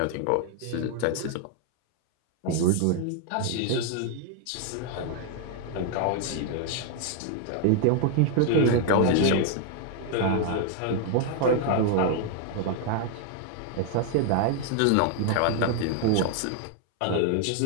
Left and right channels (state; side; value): different; both; correlation 0.00